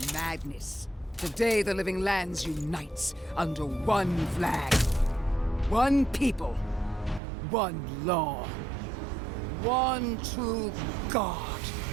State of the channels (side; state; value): left; drops out; at 7.2 s